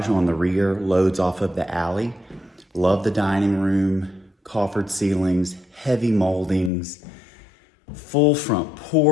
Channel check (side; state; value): right; drops out; at 6.7 s